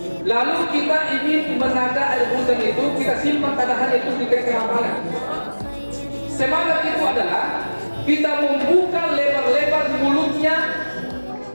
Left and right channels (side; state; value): both; inverted; correlation -1.00